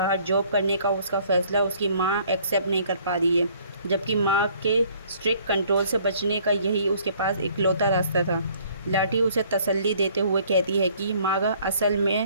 जॉब करने का उसका फ़ैसला उसकी माँ एक्सेप्ट नहीं कर पा रही है, जबकि माँ के स्ट्रिक्ट कंट्रोल से बचने का यही उसके पास इकलौता रास्ता था। लाठी उसे तसल्ली देते हुए कहती है कि माँ असल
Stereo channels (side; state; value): both; inverted; correlation -0.59